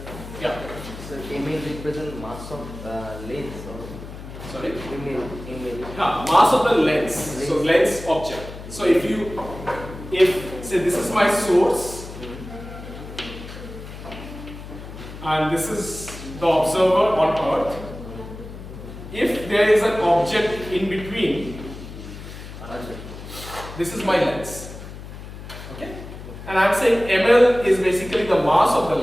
mass of lens or Sorry? image. Mass of the lens. So lens object. So if say this is my source and this is the observer on Earth, if there is an object in between, this is my lens. Okay? And I'm saying ml is basically the mass of the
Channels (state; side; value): noise; left; hum, 13 dB below the sound